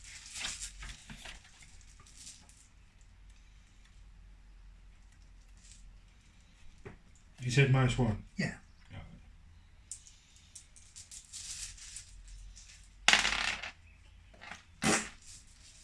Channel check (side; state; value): both; identical; correlation 1.00